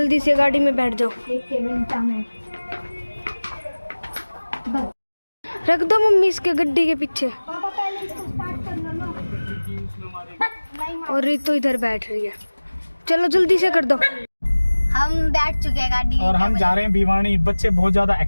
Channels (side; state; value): both; inverted; correlation -1.00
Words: से गाड़ी में बैठ जाओ। एक मिनट में रख दो मम्मी इसके गड्डी के पीछे। पापा पहले इसको स्टार्ट कर लो। और रितु इधर बैठ रही है। चलो जल्दी से कर दो। हम बैठ चुके हैं गाड़ी और हम जा रहे हैं भिवानी। बच्चे बहुत ज्यादा